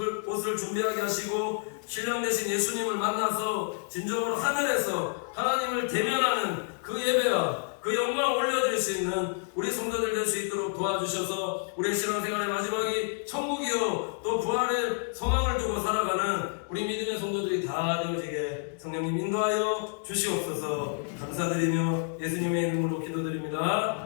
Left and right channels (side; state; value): right; silent; 59 dB below the other